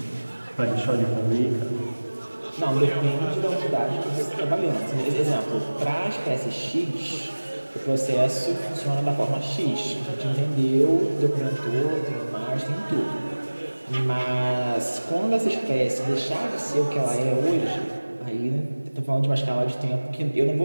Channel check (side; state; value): both; inverted; correlation -1.00